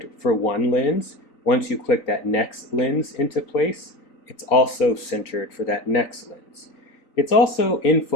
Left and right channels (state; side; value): late; right; 4.0 ms